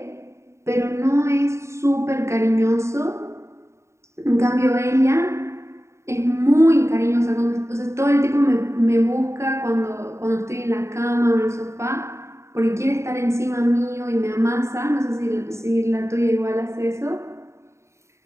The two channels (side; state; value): left; late; 0.14 ms